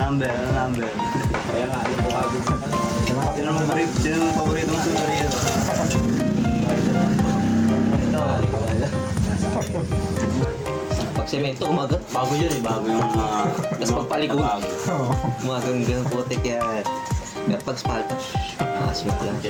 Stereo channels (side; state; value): both; identical; correlation 1.00